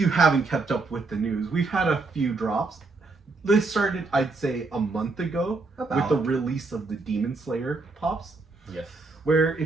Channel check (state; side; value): quieter; left; 3.7 dB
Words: haven't kept up with the news, we've had a few drops. This started, I'd say, a month ago with the release of the Demon Slayer pops. Yes. Where,